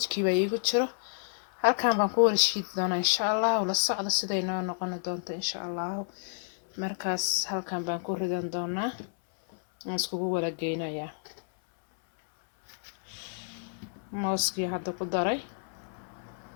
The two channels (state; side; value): silent; right; 58 dB below the other